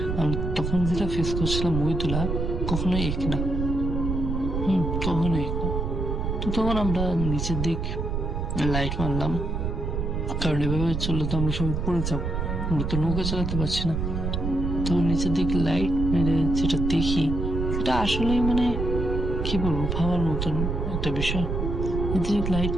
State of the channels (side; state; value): right; noise; rumble, 2 dB below the sound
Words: তখন যেটা ফেস করছিলাম ওই দোলা কখনোই এক না। কখনোই এক না। তো তখন আমরা নিচের দিক লাইট মারলাম, কারণ এভাবে চললে তো আমরা সবাই পড়ে যাবো, আমরা তো নৌকা চালাতে পারছি না। তো নিচের দিকে লাইট মেরে যেটা দেখি সেটা আসলেই মানে কি বলবো, ভাবার মতন একটা বিষয়। নিচের লাইট